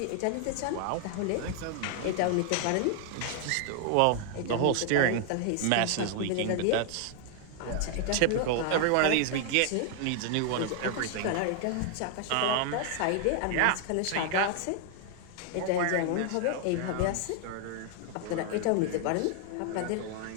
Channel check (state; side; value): different; both; correlation 0.00